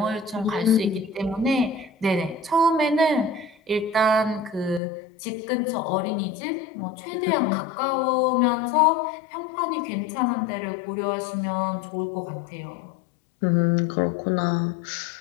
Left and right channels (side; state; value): right; drops out; at 4.8 s